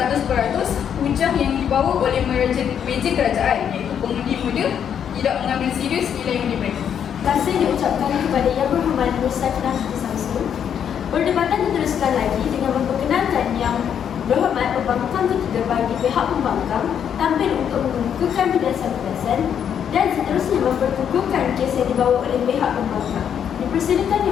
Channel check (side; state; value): right; quieter; 8.5 dB